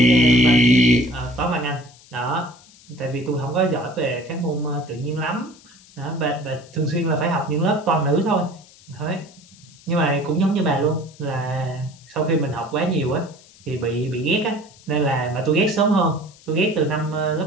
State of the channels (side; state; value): left; noise; hiss, 25 dB below the sound